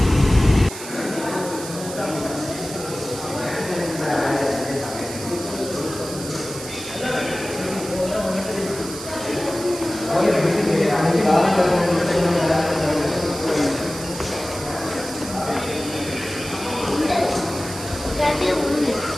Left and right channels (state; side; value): noise; right; hiss, 11 dB below the sound